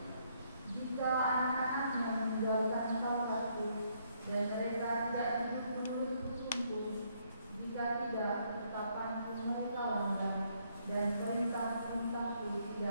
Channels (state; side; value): inverted; both; correlation -0.71